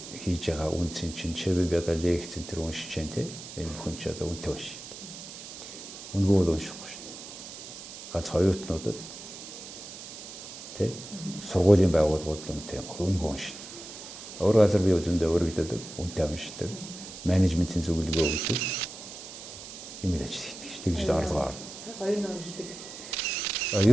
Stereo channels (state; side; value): noise; right; hiss, 12 dB below the sound